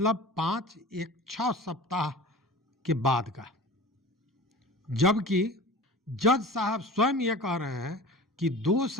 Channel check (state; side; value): normal; both; correlation 0.38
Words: 6 सप्ताह के बाद का। जबकि जज साहब स्वयं ये कह रहे हैं कि 2